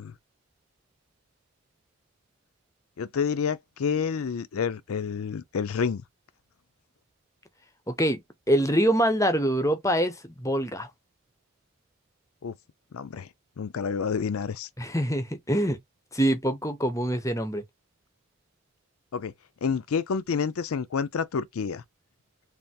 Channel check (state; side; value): normal; both; correlation 0.48